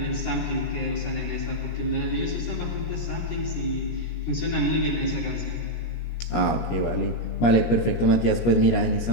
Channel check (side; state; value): right; late; 17 ms